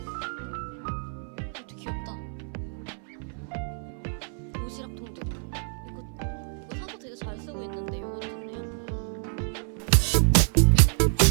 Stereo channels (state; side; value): silent; left; 59 dB below the other